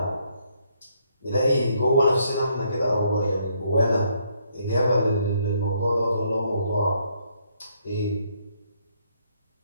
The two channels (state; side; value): inverted; both; correlation -0.71